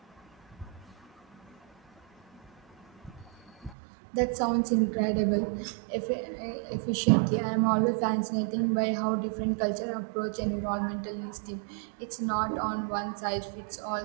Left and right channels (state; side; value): drops out; left; at 3.8 s